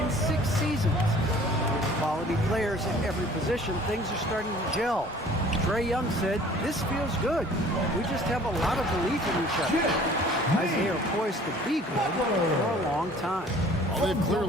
in 6 seasons. With quality players at every position, things are starting to gel. Trae Young said, "This feels good. We just have a lot of belief in each other." Guys, they are poised to be good for a long time. Well, they've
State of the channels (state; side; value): normal; both; correlation 0.51